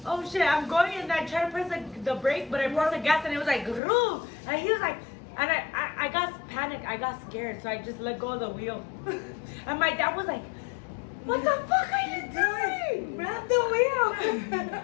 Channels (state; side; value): drops out; right; at 3.8 s